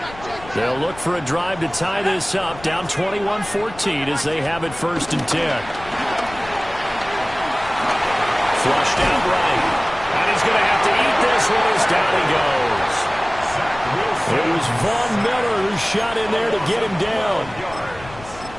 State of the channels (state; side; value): noise; left; rumble, 17 dB below the sound